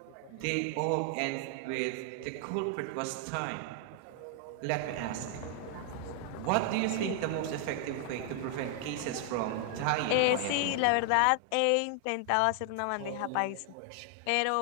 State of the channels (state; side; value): different; both; correlation 0.00